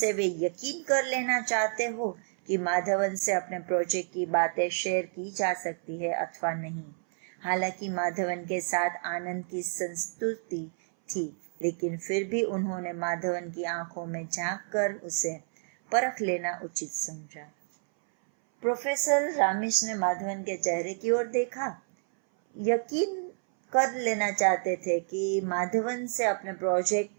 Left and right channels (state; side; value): silent; left; 58 dB below the other